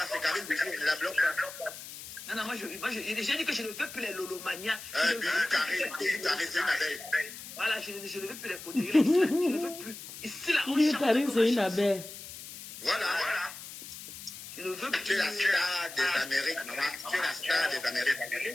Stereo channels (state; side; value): noise; left; hiss, 12 dB below the sound